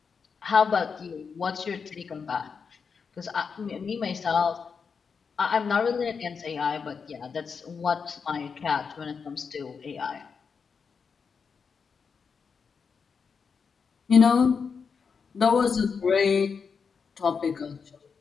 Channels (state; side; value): quieter; right; 5.8 dB